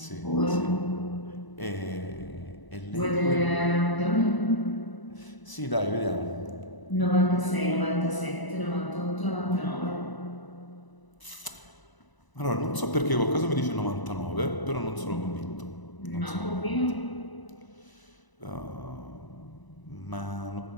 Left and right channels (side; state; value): right; late; 1.0 ms